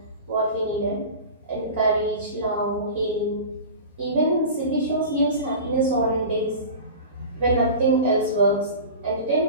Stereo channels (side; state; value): both; inverted; correlation -0.33